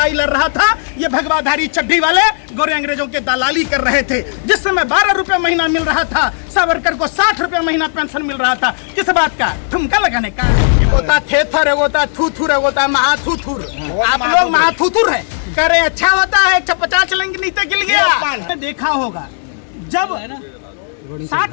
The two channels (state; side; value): silent; right; digital silence